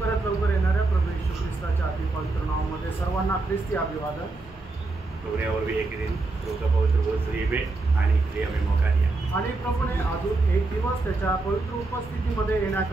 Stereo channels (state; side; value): quieter; left; 3.4 dB